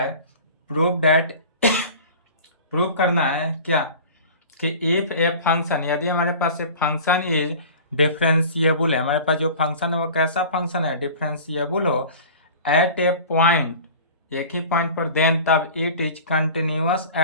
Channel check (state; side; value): inverted; both; correlation -0.40